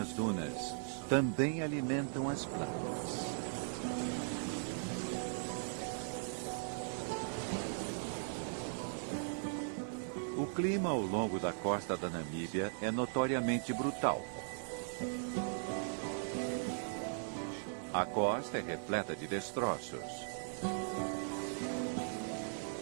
dunas também alimentam as plantas. O clima ao longo da costa da Namíbia é notoriamente brutal. A costa é repleta de destroços.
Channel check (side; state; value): left; silent; digital silence